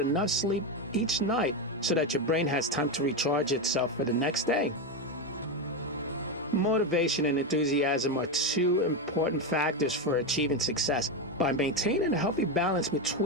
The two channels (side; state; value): both; normal; correlation 0.11